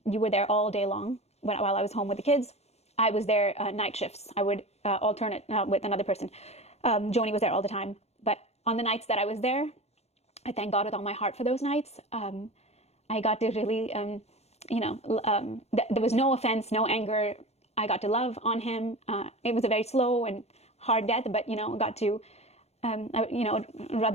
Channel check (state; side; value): late; right; 0.31 ms